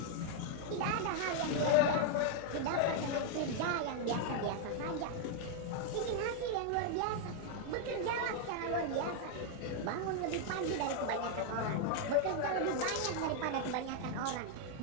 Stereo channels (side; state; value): both; different; correlation 0.00